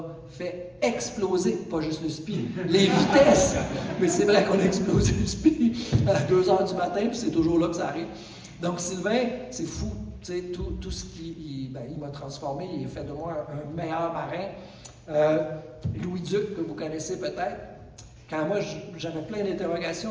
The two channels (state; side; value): identical; both; correlation 1.00